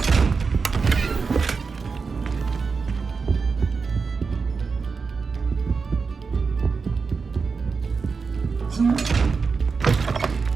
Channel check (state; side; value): quieter; left; 4.9 dB